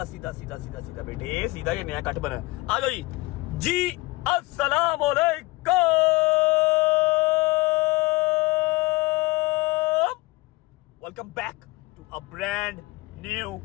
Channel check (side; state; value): right; quieter; 22.2 dB